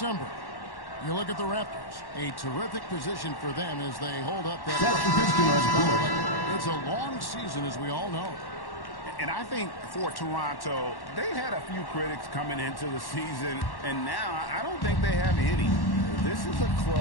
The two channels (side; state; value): right; late; 1.1 ms